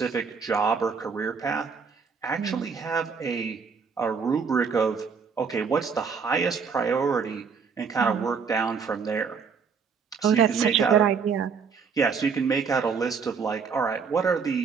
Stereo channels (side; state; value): left; quieter; 5.8 dB